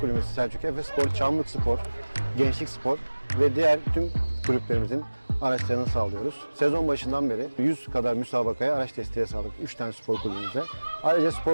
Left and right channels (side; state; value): both; inverted; correlation -1.00